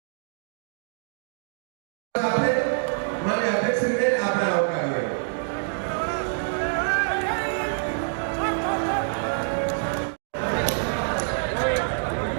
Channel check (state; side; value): silent; left; digital silence